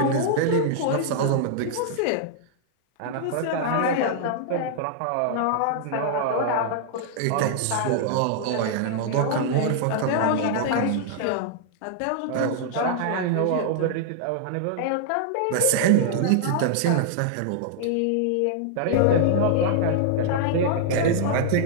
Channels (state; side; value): different; both; correlation -0.01